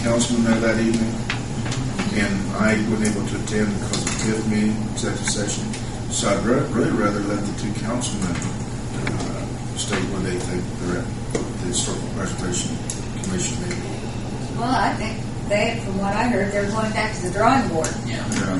councilmen there that evening, and I wasn't able to attend because of the fifth meeting, executive session. So I'd really rather let the 2 councilmen state where they think they're at the Historical Preservation Commission meeting. Well, I think from what I heard, they're going back to the drawing board. Yeah.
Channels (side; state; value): both; identical; correlation 1.00